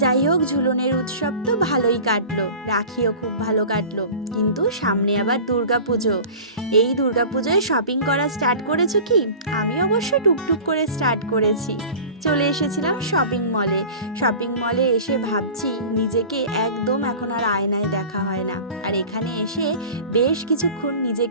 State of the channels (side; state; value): both; inverted; correlation -0.38